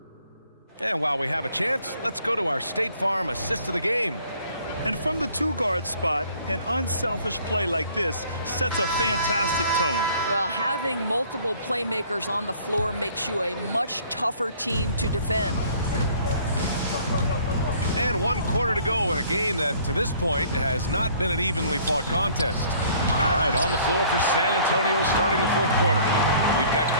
And while we have a chance, let's go to our State Farm assist of the game. And from the two-guard spot, an unselfish play like this sets a fantastic tone. Well, having multiple playmakers on the floor makes you a much tougher team to defend. And 1 quarter to go in a game that, to this point, has not been an evenly fought contest. All right, on the floor for San Antonio starting the fourth quarter. We've got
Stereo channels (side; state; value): both; inverted; correlation -0.56